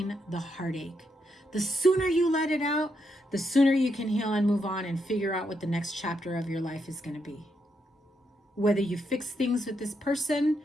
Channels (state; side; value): normal; both; correlation 0.80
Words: the heartache. The sooner you let it out, the sooner you can heal and move on and figure out what the next chapter of your life is going to be. Whether you fix things with this person